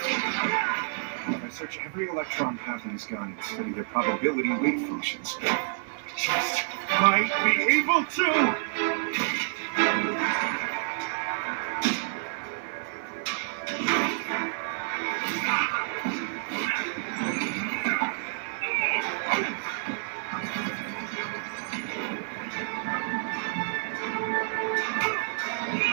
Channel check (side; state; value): left; silent; digital silence